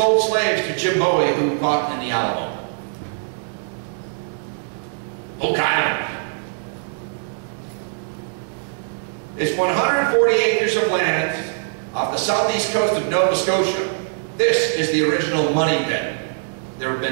slaves to Jim Bowie, who fought in the Alamo. Oak Island. It's 140 acres of land off the southeast coast of Nova Scotia. This is the original money pit. There have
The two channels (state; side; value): silent; left; digital silence